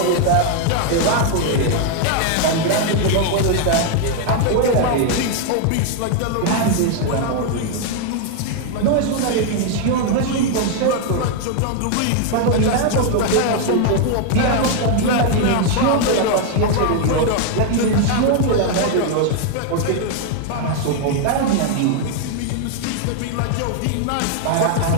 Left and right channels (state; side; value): different; both; correlation 0.00